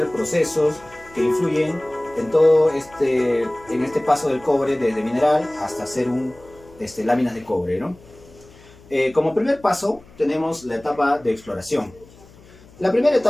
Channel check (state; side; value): noise; left; hum, 24 dB below the sound